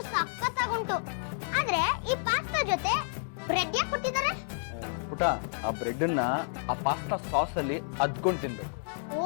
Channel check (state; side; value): silent; right; digital silence